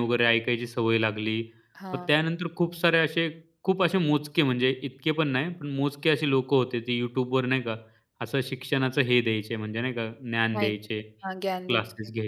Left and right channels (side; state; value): both; identical; correlation 1.00